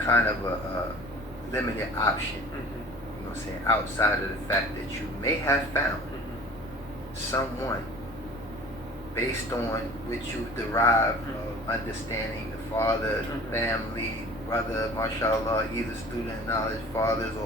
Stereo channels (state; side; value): normal; both; correlation 0.44